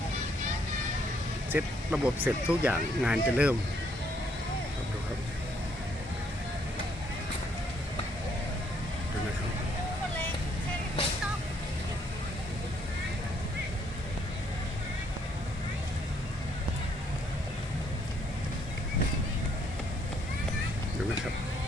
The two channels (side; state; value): both; normal; correlation 0.68